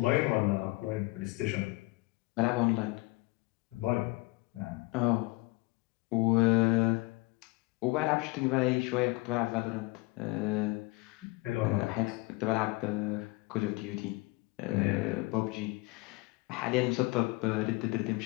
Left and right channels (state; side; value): quieter; right; 23.8 dB